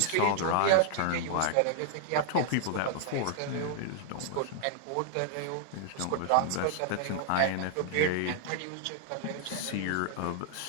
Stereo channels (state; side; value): different; both; correlation 0.00